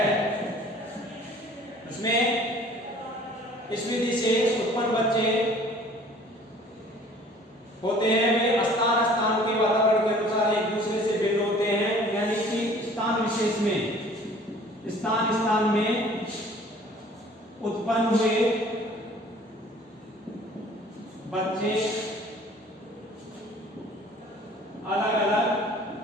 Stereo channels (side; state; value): both; normal; correlation 0.51